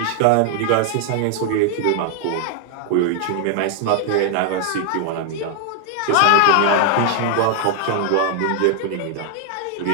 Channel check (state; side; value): different; both; correlation 0.00